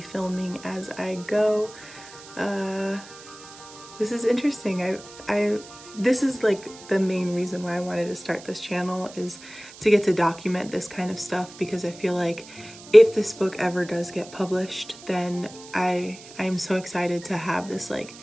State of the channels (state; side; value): noise; right; hiss, 18 dB below the sound